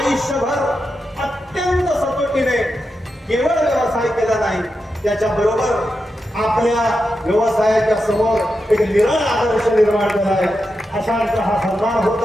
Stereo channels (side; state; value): both; normal; correlation 0.88